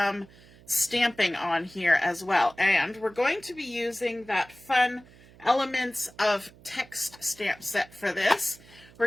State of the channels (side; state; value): right; noise; hum, 24 dB below the sound